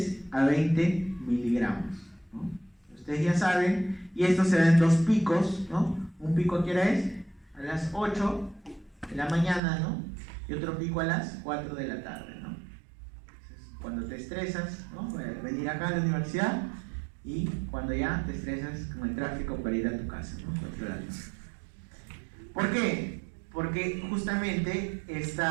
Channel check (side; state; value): left; drops out; at 9.6 s